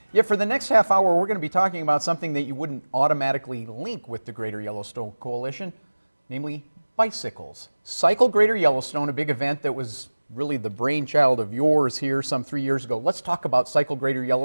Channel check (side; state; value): both; inverted; correlation -1.00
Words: Yeah, for the next half hour, we're going to be talking about something that you wouldn't automatically link with the Greater Yellowstone Coalition, namely bicycles. Cycle Greater Yellowstone, a big event that was really the brainchild of yours here some 3 years ago. Let's talk about Cycle Greater